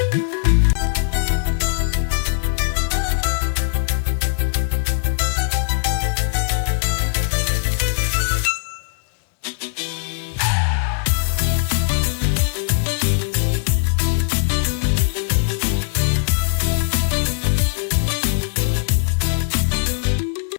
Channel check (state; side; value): silent; right; digital silence